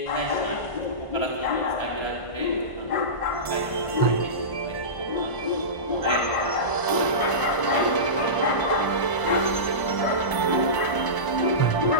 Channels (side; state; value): right; late; 1.0 ms